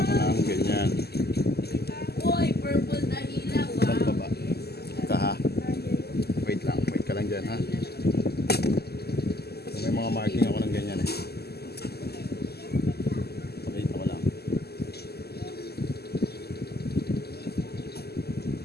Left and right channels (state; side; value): late; right; 0.46 ms